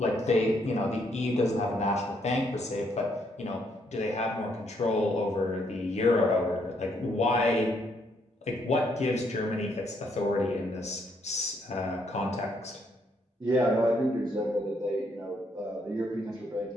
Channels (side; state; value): both; normal; correlation 0.72